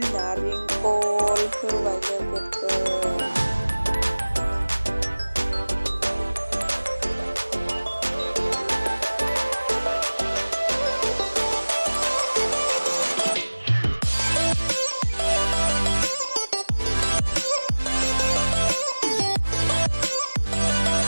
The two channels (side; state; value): both; inverted; correlation -1.00